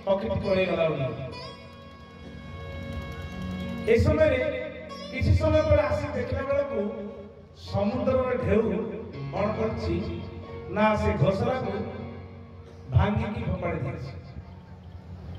पक्षी पड़े गला ए समय किसी समय पर आसी देखला बेला को समुद्र ढेउ कौन करछि ना से घोसला को भांगी की फोपाड़ी दिछि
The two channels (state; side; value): identical; both; correlation 1.00